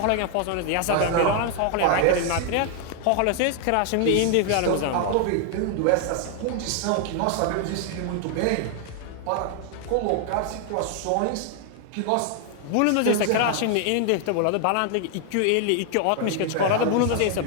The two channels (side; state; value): both; different; correlation 0.00